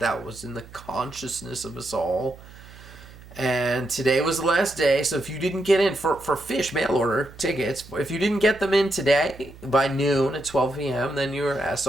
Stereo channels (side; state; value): right; noise; hum, 19 dB below the sound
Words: was in the consciousness of us all. And today was the last day, so if you didn't get in for Fish mail order tickets, if you didn't get them in today by noon at 12 p.m., then you're